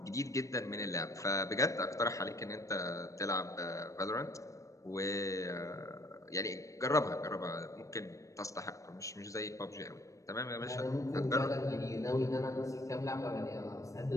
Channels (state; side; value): late; right; 0.16 ms